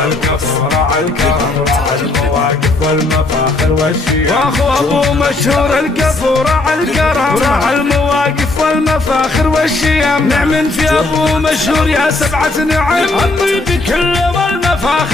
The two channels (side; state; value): right; quieter; 3.1 dB